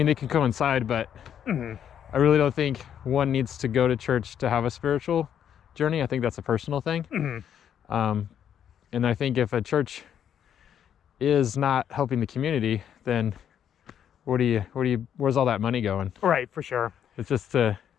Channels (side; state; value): right; quieter; 9.2 dB